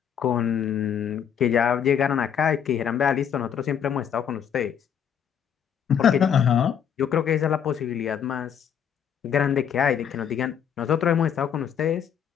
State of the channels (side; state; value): right; quieter; 8.4 dB